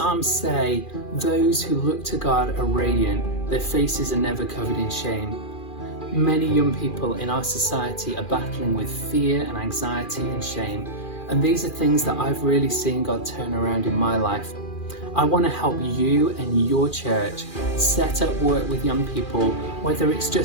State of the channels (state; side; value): late; right; 2.4 ms